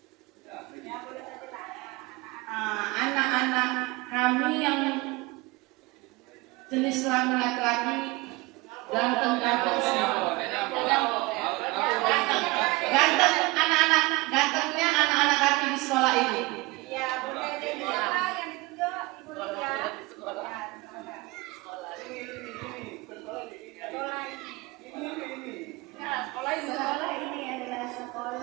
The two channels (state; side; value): quieter; left; 23.1 dB